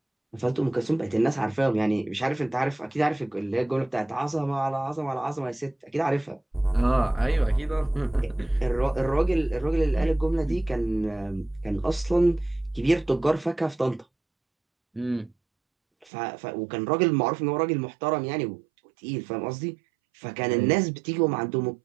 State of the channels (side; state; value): left; drops out; at 16.1 s